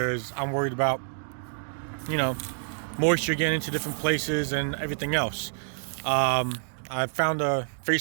I'm worried about, you know, moisture getting into different places and everything else. I found a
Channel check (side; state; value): left; silent; digital silence